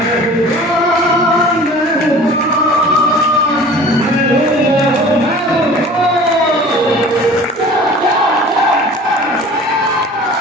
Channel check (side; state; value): both; normal; correlation 0.43